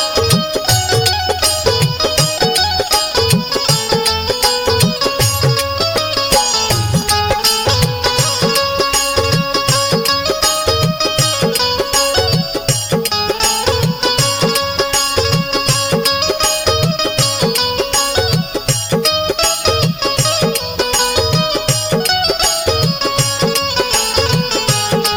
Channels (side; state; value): both; identical; correlation 1.00